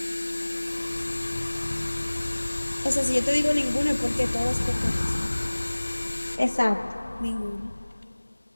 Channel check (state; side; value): inverted; both; correlation -1.00